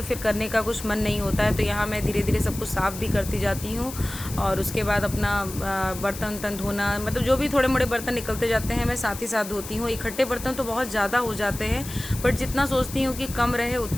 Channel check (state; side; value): noise; left; hiss, 12 dB below the sound